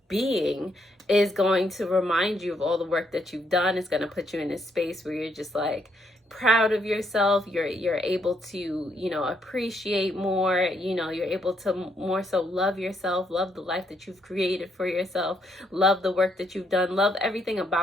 being is going to remind you of all the work that you've done. It's going to put you in a space where you're just like proud of yourself. You're able to, you know, appreciate more. You know, you're able to more so love yourself, love the life that you've created for yourself, love the work that you've done, love everything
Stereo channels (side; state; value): both; normal; correlation 0.74